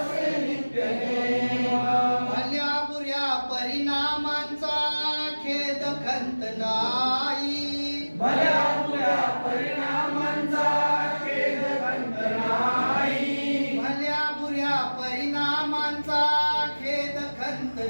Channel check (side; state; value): both; inverted; correlation -1.00